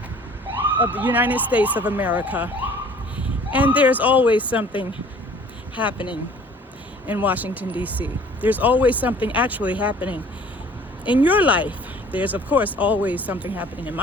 of the United States of America. And there's always something happening in Washington, D.C. There's always something actually happening in your life. There's, of course, always something happening in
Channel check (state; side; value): normal; both; correlation 0.51